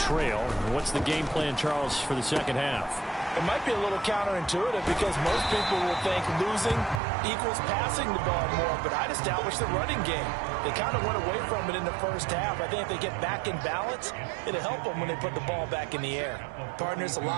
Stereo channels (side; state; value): left; drops out; at 7.0 s